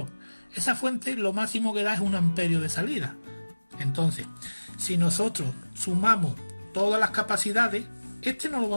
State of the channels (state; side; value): inverted; both; correlation -1.00